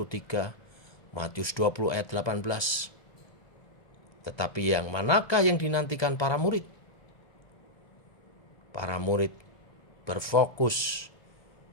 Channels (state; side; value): late; right; 1.3 ms